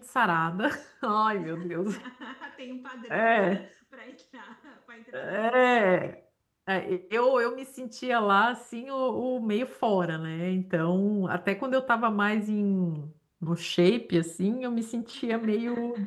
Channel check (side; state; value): both; identical; correlation 1.00